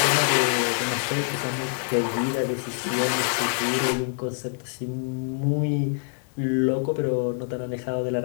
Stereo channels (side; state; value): right; silent; digital silence